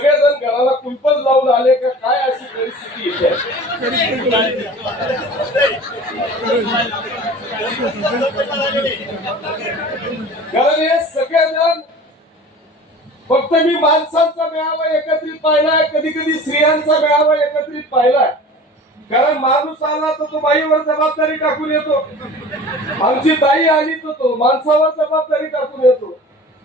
घराला कुलपच लावून आले का काय, अशी परिस्थिती येते. कारण हे सगळेजण फक्त मी माणसांचा मेळावा एकत्रित पाहिलाय, कधी कधी स्त्रियांचा मेळावा एकत्रित पाहिलाय. कारण माणूस आला तर तो बाईवर जबाबदारी टाकून येतो, आमची ताई आली तर तो माणसावर जबाबदारी टाकून येतो.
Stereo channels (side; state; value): both; normal; correlation 0.41